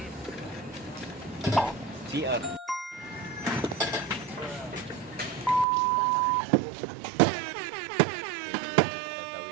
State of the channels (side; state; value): left; drops out; at 5.7 s